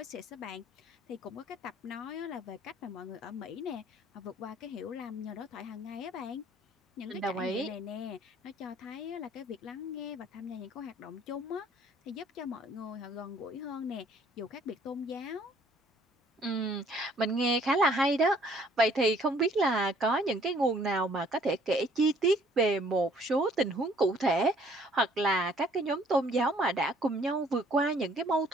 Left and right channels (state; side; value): normal; both; correlation 0.59